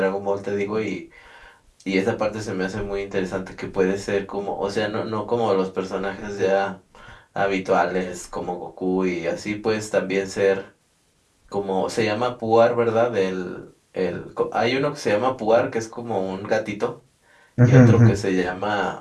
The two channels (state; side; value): identical; both; correlation 1.00